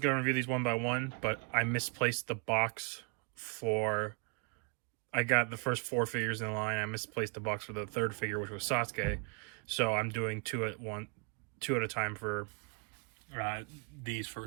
going to review these one by one, but I misplaced the box for. I got the first four figures in line. I misplaced the box for the third figure, which was Sasuke. So I'm doing two at a time for these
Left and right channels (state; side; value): quieter; left; 36.1 dB